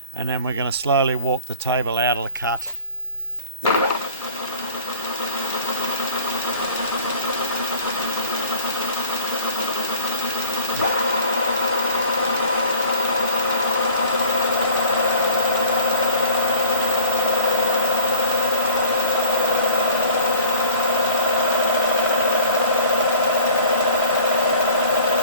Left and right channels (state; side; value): inverted; both; correlation -0.44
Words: and then we're going to slowly walk the table out of the cut.